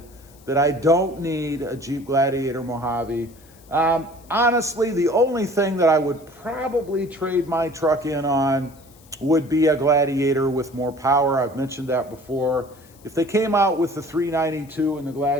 that I don't need a Jeep Gladiator Mojave. Honestly, the only thing that I would probably trade my truck in on would be a Gladiator with more power. I've mentioned that before. If they came out with the 392 in the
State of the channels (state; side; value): noise; left; hiss, 27 dB below the sound